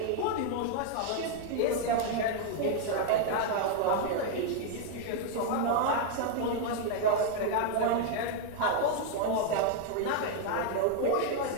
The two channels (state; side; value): different; both; correlation 0.00